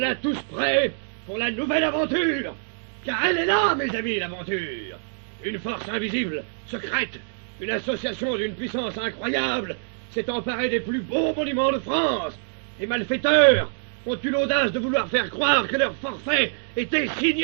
tous prêts pour la nouvelle aventure. Car elle est là, mes amis, l'aventure. Une force invisible, secrète, une association d'une puissance incroyable s'est emparée des plus beaux monuments de France. Les malfaiteurs ont eu l'audace de vouloir faire croire que leur forfait était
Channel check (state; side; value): silent; left; digital silence